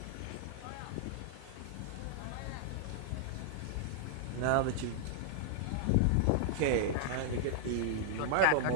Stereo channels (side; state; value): both; different; correlation -0.01